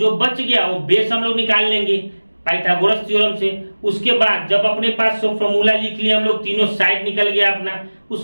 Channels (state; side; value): inverted; both; correlation -1.00